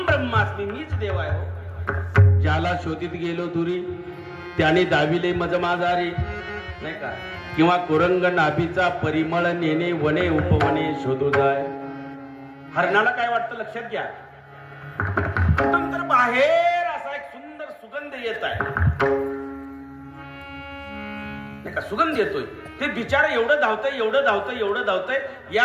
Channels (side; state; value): both; identical; correlation 1.00